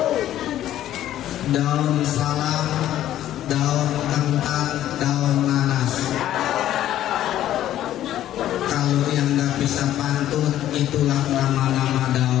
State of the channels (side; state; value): right; quieter; 12.5 dB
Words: Daun salam, daun kentang, daun nanas. Kalau yang nggak bisa pantun, itulah nama-nama